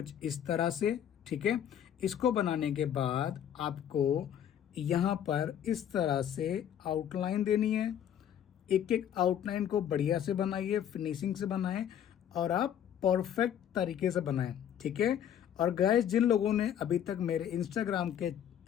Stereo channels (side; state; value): right; quieter; 9.8 dB